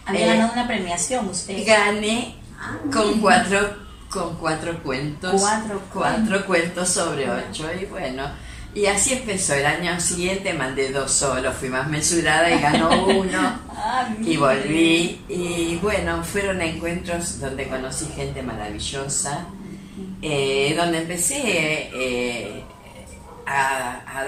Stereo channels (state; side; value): identical; both; correlation 1.00